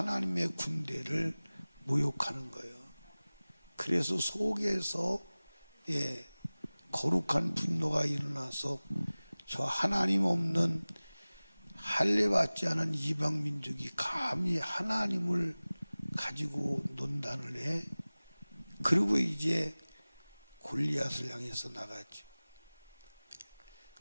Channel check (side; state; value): both; inverted; correlation -0.99